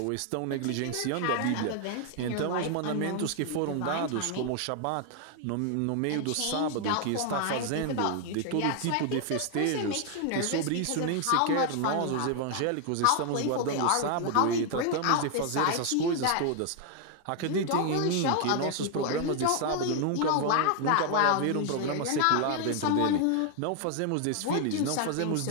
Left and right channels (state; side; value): different; both; correlation 0.00